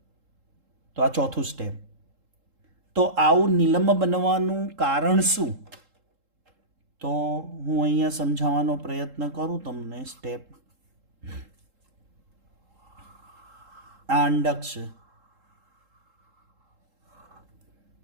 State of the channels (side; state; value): left; late; 3.7 ms